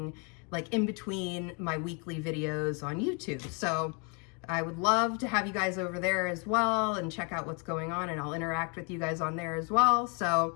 like in between my weekly videos on YouTube. So I would love to have you guys over there as well and check out what's going on, and I'll interact with you guys on there as well.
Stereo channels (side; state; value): right; quieter; 35.5 dB